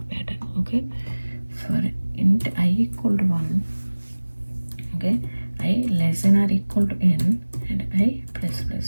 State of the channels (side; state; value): both; inverted; correlation -1.00